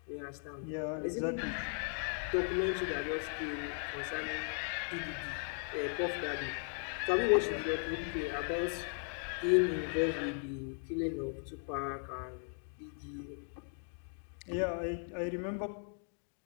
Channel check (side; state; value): right; silent; 53 dB below the other